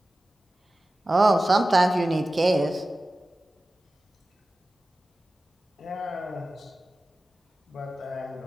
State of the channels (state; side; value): normal; both; correlation 0.95